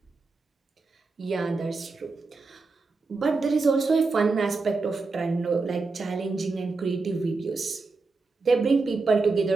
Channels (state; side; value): quieter; left; 3.9 dB